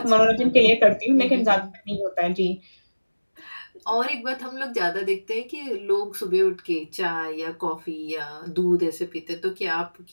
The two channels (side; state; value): both; inverted; correlation -1.00